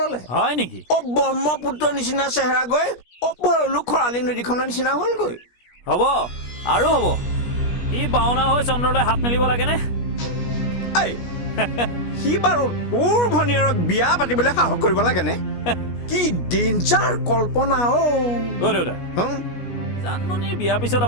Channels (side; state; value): right; late; 17 ms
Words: হয় নেকি ব্ৰহ্মপুত্ৰৰ নিচিনা চেহেৰা গৈ ভৰলু খৰালি নদীখনৰ নিচিনা হ'লগৈ হ'ব আৰু হ'ব ই বাওনা হৈ চন্দ্ৰলৈ হাত মেলিব লাগেনে এই সি বাৰু তোৰ ভনীয়েৰক বিয়া পাতিবলৈ সাহস কৰিব লাগেনে কি ডেঞ্জাৰ কল্পনা দেউতা জানমণিৰ বিয়াৰ পিছত